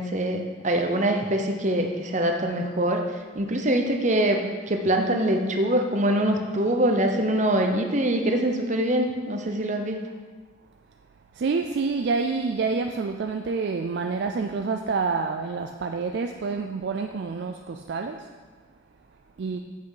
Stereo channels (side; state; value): both; normal; correlation 0.28